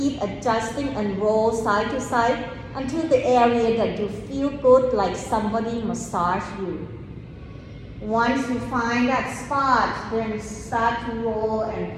adjusting and roll side to side until the area that you feel good, like somebody massage you. Once you find that spot, then start to roll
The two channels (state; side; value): identical; both; correlation 1.00